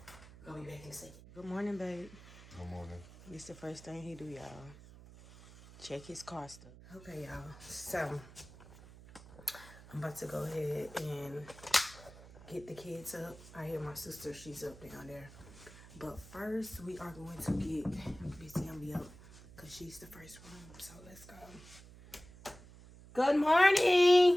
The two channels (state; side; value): noise; right; hum, 19 dB below the sound